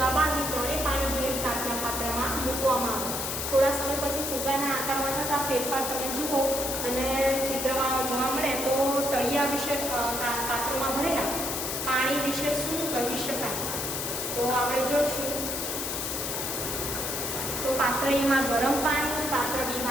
બાંધી ત્રણેય પાણી ભરેલ કાચના પાત્રમાં મૂકવામાં આવે. થોડા સમય પછી ફુગ્ગાના આકારમાં થતા ફેરફાર તમે જુઓ અને ચિત્રમાં જોવા મળે તો તળિયા વિશે પાત્રોમાં ભરેલા પાણી વિશે શું કહી શકાય? તો આપણે જોઈશું. તો પાત્ર એમાં ગરમ પાણી, પાત્ર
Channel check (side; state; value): left; noise; hiss, 3 dB below the sound